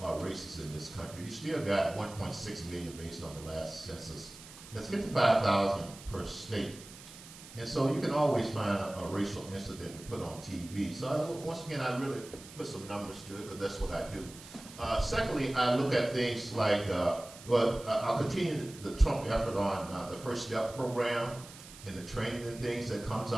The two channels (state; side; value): noise; right; hiss, 17 dB below the sound